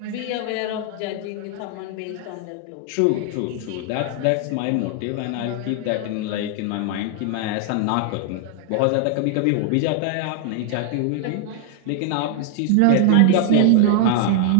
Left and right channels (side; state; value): both; different; correlation 0.00